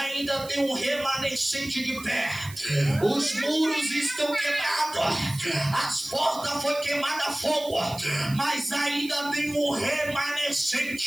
tem um remanescente de pé. Os muros estão quebrados, as portas foram queimadas a fogo, mas ainda tem um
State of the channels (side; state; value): right; noise; hiss, 16 dB below the sound